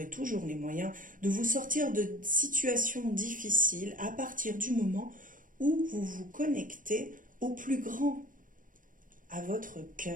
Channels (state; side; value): late; left; 0.39 ms